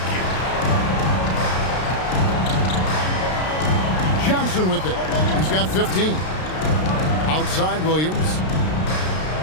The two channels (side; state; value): right; late; 33 ms